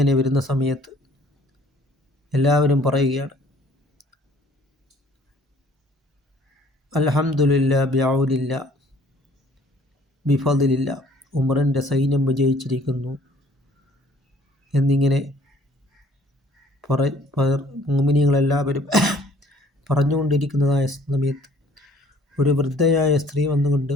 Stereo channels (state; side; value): normal; both; correlation 0.57